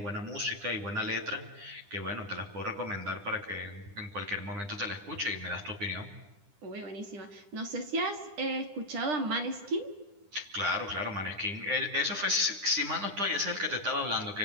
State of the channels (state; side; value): late; left; 10 ms